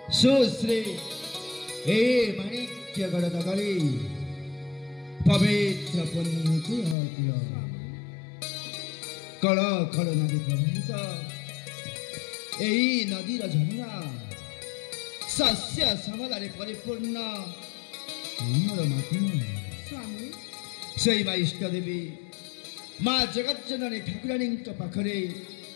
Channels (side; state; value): right; drops out; at 7.0 s